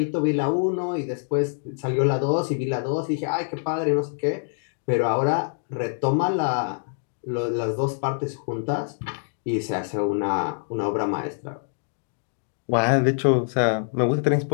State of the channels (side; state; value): right; silent; digital silence